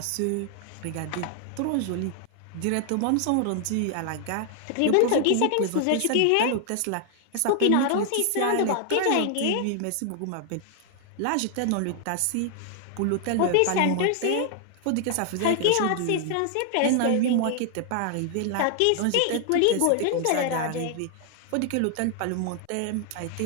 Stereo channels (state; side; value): different; both; correlation 0.00